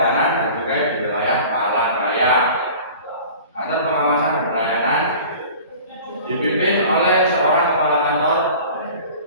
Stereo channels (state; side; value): inverted; both; correlation -0.42